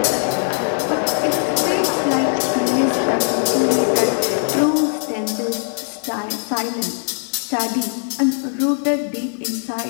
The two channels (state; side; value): silent; right; digital silence